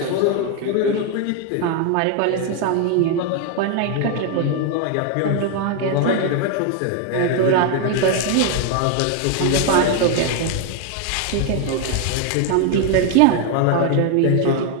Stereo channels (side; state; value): both; different; correlation 0.00